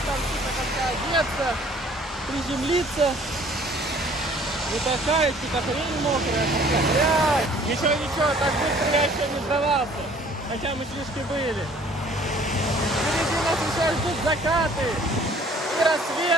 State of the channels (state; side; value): normal; both; correlation 0.55